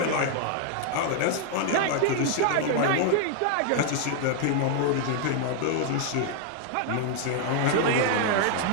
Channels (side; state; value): both; different; correlation 0.00